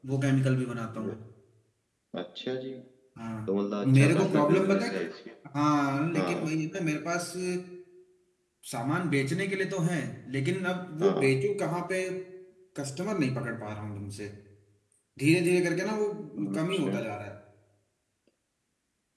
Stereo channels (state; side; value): identical; both; correlation 1.00